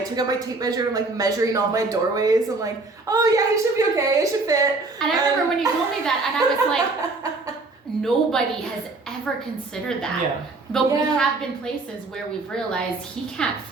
took out my tape measure and, like, measuring all my doorways. I'm like, oh, yeah, you should be okay, it should fit. And I remember when you told me that, and I was like, nobody has ever considered that. Yeah. But we have been places where we've realized he can't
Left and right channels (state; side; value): quieter; left; 3.4 dB